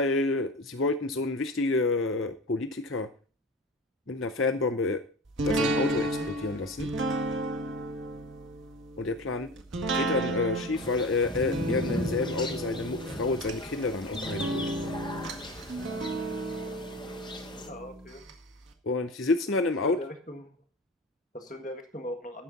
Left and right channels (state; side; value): normal; both; correlation 0.31